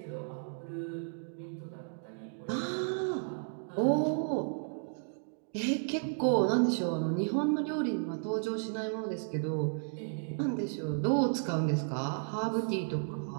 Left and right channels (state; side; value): silent; left; digital silence